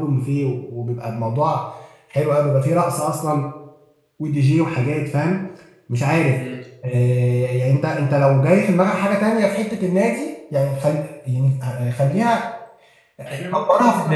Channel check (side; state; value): both; identical; correlation 1.00